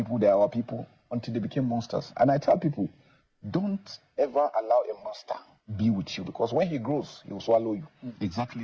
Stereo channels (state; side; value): identical; both; correlation 1.00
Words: they're our people, until they became monsters. And I tell people, don't ever allow a monster be with you, because when he grows, he will swallow you. Exactly